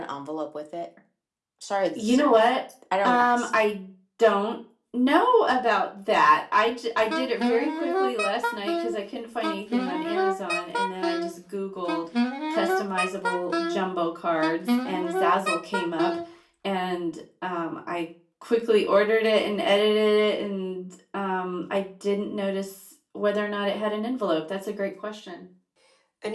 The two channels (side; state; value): both; identical; correlation 1.00